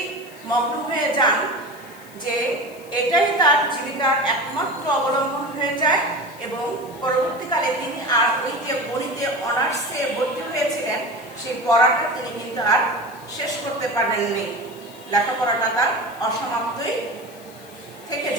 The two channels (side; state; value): left; noise; hiss, 22 dB below the sound